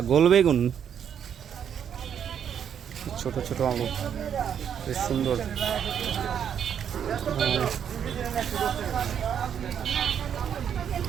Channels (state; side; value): quieter; left; 8.5 dB